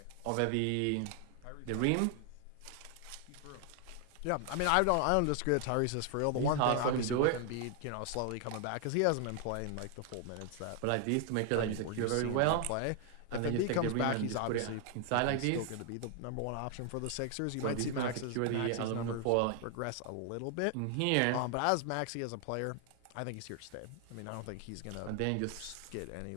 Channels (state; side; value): different; both; correlation 0.00